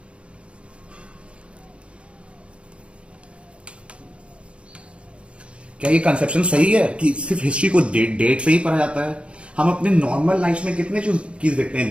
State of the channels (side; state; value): left; late; 0.059 ms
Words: क्या ये कंसेप्शन सही है कि सिर्फ हिस्ट्री को डेट से ही पढ़ा जाता है. हम अपने नॉर्मल लाइफ में कितने चीज देखते हैं